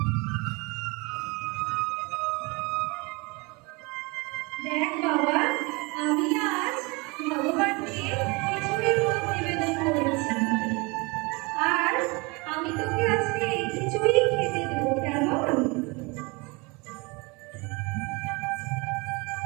দেখ বাবা, আমি আজ ভগবানকে খিচুড়ি ভোগ নিবেদন করেছি আর আমি তোকে আজকে এই খিচুড়ি খেতে দেবো, কেমন?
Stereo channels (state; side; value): quieter; left; 27.1 dB